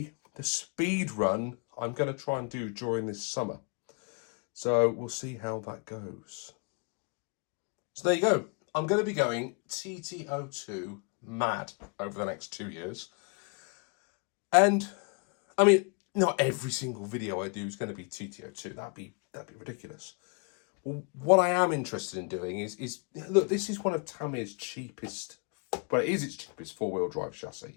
The speed run I'm going to try and do during this summer. So we'll see how that goes. So there you go. I'm going to be going TT02 mad over the next 2 years. And, I mean, not every single video I do is going to be TT02. That'd be ridiculous. What I am interested in doing is look, this is one of Tamiya's cheapest, well, it is its cheapest 4-wheel drive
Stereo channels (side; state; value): right; quieter; 35.0 dB